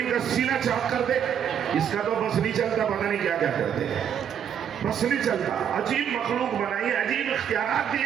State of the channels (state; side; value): quieter; left; 8.7 dB